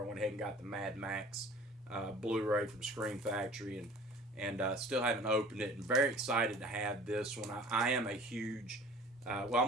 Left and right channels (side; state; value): both; normal; correlation 0.46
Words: I went ahead and got the Mad Max Blu-ray from Screen Factory, and still haven't opened it, and very excited to have this one. I am a huge I'm